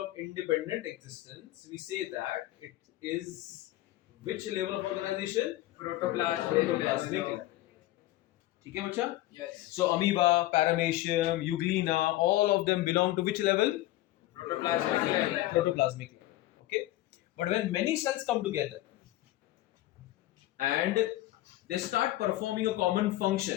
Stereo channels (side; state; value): right; quieter; 16.3 dB